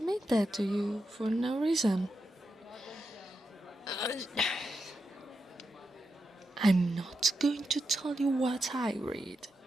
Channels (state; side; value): normal; both; correlation 0.87